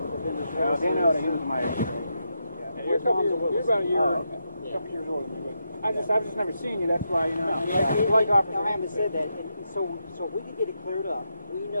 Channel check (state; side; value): inverted; both; correlation -0.84